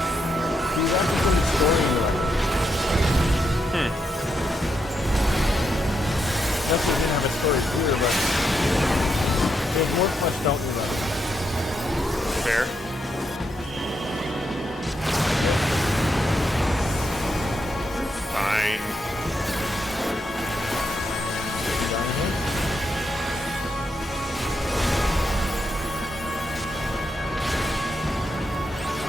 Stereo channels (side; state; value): both; normal; correlation 0.81